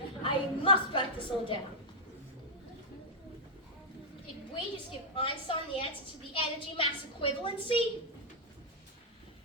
I must write this all down. Did we just give Einstein the answer to the energy-mass equivalency?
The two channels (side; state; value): both; normal; correlation -0.06